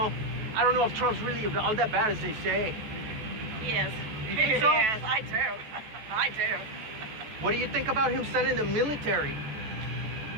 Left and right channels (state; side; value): late; left; 14 ms